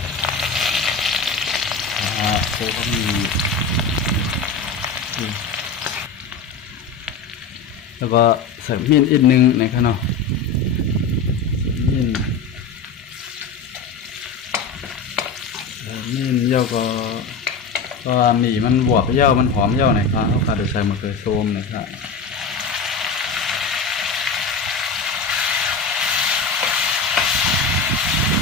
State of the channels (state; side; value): quieter; right; 4.8 dB